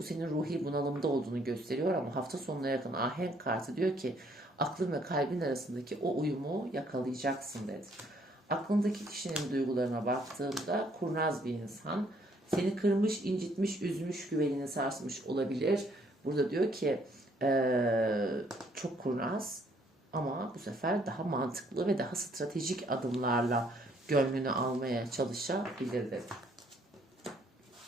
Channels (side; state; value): both; normal; correlation 0.66